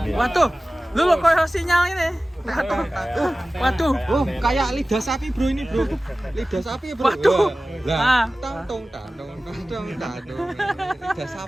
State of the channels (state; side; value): normal; both; correlation 0.97